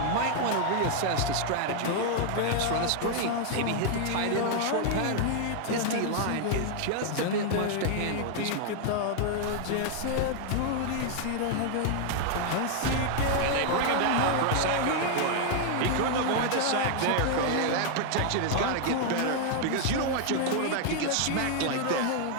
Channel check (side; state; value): both; different; correlation 0.00